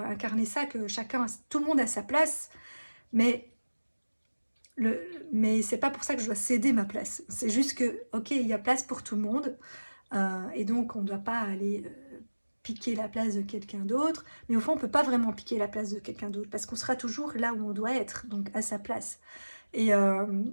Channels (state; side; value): inverted; both; correlation -1.00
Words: ça, que tout le monde a sa place. Mais mais c'est pas pour ça que je dois céder ma place. C'est juste que, ok, il y a place pour tout le monde, et donc on ne doit pas aller piquer la place de quelqu'un d'autre. Mais au fond, on peut pas vraiment piquer la place de quelqu'un d'autre parce qu'on sera toujours là où on doit être, donc à sa place. Et